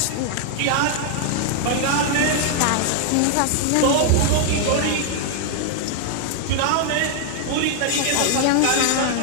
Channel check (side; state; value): both; different; correlation 0.00